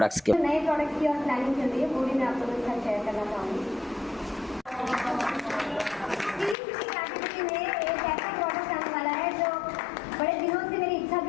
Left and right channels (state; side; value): drops out; right; at 6.6 s